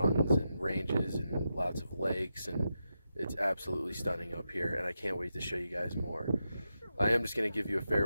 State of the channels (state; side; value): inverted; both; correlation -0.87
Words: and ranges and lots of lakes, and it's absolutely stunning up here, and I can't wait to show you guys more. I am just going to give you a